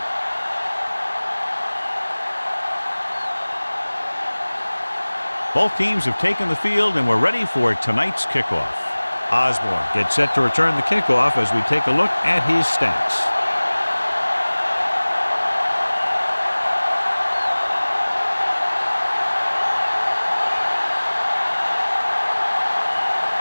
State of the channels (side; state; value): both; inverted; correlation -1.00